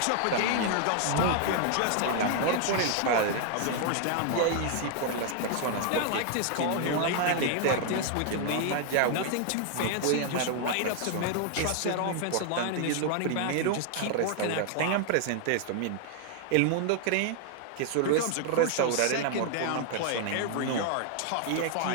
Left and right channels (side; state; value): both; different; correlation 0.00